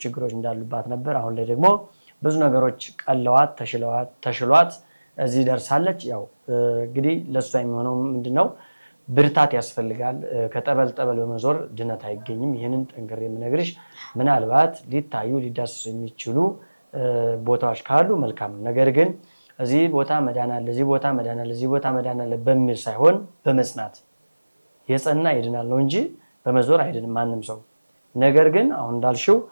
ችግሮች እንዳሉባት ነበር። አሁን ላይ ደግሞ ብዙ ነገሮች ቀለዋት ተሽሏት እዚህ ደርሳለች። ያው እንግዲህ ለእሷ የሚሆነው ምንድነው? ብርታት ያስፈልጋል። ከጠበል በመዞር ድነት አይገኝም። ይህንን ጠንክሬ የምነግርሽ ምናልባት ሊታዩ ሊዳሰሱ የሚችሉ ቦታዎች ካሉ መልካም ነው። ነገር ግን እዚህ ቦታ መዳን አለ፣ እዚህ ቦታ መዳን አለ፣ እዚህ ቦታ መዳን አለ በሚል ሳይሆን በመጽናት የጸና ይድናል ነው እንጂ በመዞር አይድንም ማንም ሰው። ነገር ግን አሁን እንዳልሽው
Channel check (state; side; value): inverted; both; correlation -1.00